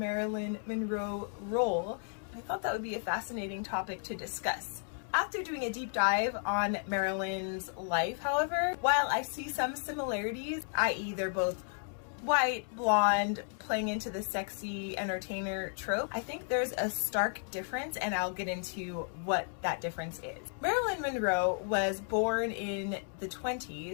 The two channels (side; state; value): right; silent; 55 dB below the other